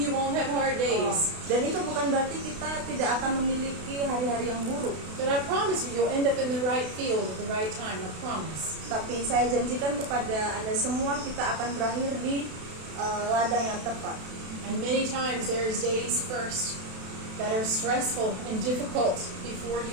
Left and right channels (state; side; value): late; left; 32 ms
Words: you won't have hard days. Dan itu bukan berarti kita tidak akan memiliki hari-hari yang buruk. But I promise you, you'll end up in the right field at the right time. I promise. Tapi saya janjikan kepada Anda semua, kita akan berakhir di ladang yang tepat. And many times there's days first that are stressful and difficult before